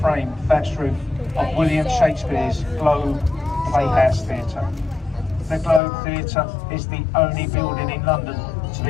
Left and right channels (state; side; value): drops out; right; at 5.8 s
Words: thatched roof of William Shakespeare's Globe Playhouse Theatre. The Globe Theatre is the only building in London to